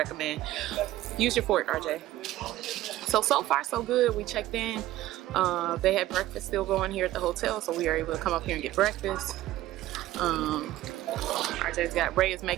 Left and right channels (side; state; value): left; quieter; 15.3 dB